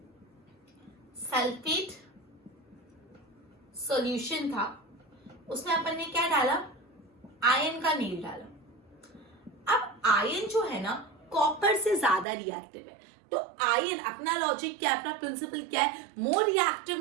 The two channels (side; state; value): left; drops out; at 12.2 s